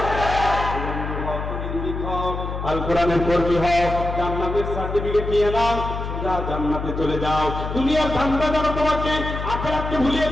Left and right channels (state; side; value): noise; left; hum, 5 dB below the sound